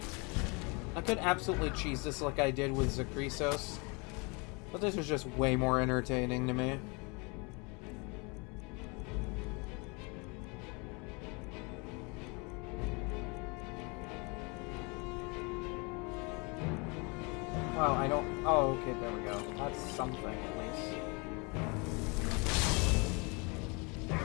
I could absolutely cheese this like I did with Zakrisos, but this was just way more entertaining to me. Wow, I don't... Oh, okay, there we go. That's something, at least.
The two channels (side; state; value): right; quieter; 30.2 dB